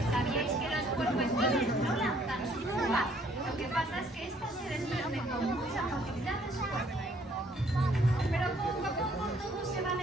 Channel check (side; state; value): both; normal; correlation 0.63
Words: ¿Sabíais que los puercoespines no lanzan sus púas? Lo que pasa es que estas se desprenden con mucha facilidad de su cuerpo. Pero poco a poco todos se van